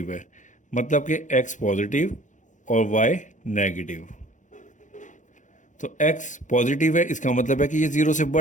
है, मतलब कि एक्स पॉजिटिव और वाई नेगेटिव। तो एक्स पॉजिटिव है, इसका मतलब है कि ये ज़ीरो से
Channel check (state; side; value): late; right; 0.36 ms